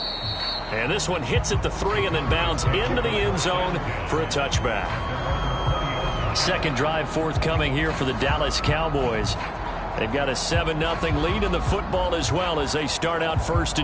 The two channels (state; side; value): identical; both; correlation 1.00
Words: And this one hits at the 3 and then bounds into the end zone for a touchback. Second drive forthcoming here for the Dallas Cowboys. They've got a 7-0 lead in the football as well as they start out 1st